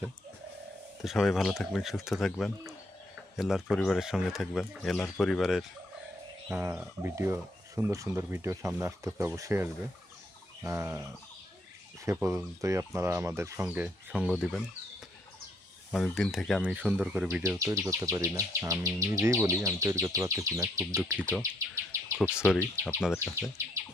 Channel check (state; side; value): normal; both; correlation 0.71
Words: তো সবাই ভালো থাকবেন, সুস্থ থাকবেন, এলার পরিবারের সঙ্গে থাকবেন। এলার পরিবারের ভিডিও, সুন্দর সুন্দর ভিডিও সামনে আসতেছে, অবশ্যই আসবে। সে পর্যন্তই আপনারা আমাদের সঙ্গে সঙ্গ দিবেন। অনেক দিন থেকে আমি সুন্দর করে ভিডিও তৈরি করতে পারি না, আমি নিজেই বলি আমি তৈরি করতে পারতেছি না। খুব দুঃখিত, খুব সরি আপনাদের কাছে।